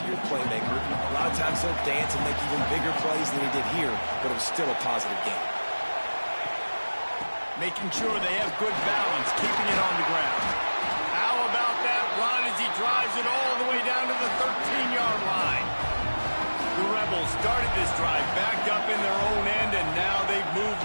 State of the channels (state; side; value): inverted; both; correlation -1.00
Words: your playmaker. A lot of times he'll dance and make even bigger plays than he did here, but it was still a positive game. Making sure they have good balance, keeping it on the ground. How about that run as he drives it all the way down to the 13-yard line? The Rebels started this drive backed up in their own end, and now they've